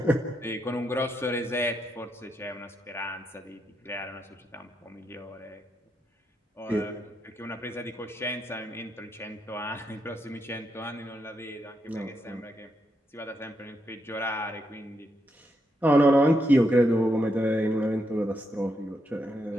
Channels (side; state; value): both; normal; correlation 0.81